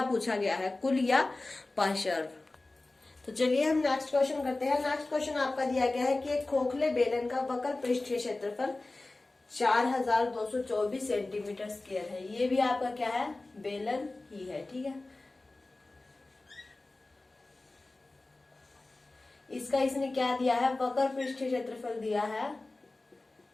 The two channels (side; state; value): right; quieter; 3.1 dB